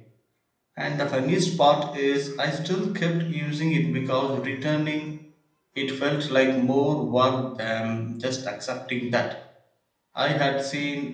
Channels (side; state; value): both; identical; correlation 1.00